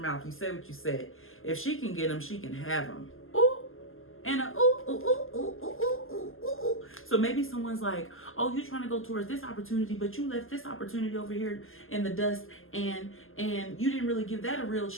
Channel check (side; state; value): right; late; 0.60 ms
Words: You said what you said. If she can get them, she can have them. Ooh. And a ooh, ooh, ooh, ooh, ooh, ooh, ooh, ooh. So maybe someone's like, oh, you're trying to go towards this opportunity, but you left this opportunity over here in the dust and you didn't really give that a real